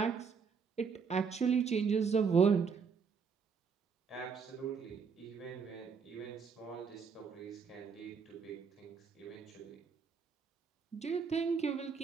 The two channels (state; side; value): quieter; left; 5.8 dB